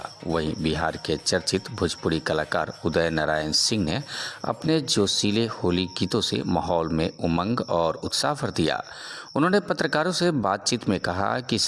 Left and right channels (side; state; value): both; identical; correlation 1.00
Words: वहीं बिहार के चर्चित भोजपुरी कलाकार उदय नारायण सिंह ने अपने जोशीले होली गीतों से माहौल में उमंग और उत्साह भर दिया। उन्होंने पत्रकारों से बातचीत में कहा कि